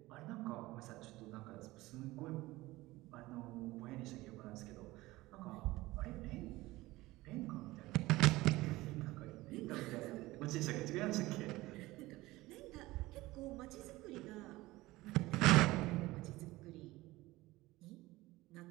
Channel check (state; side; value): quieter; left; 19.0 dB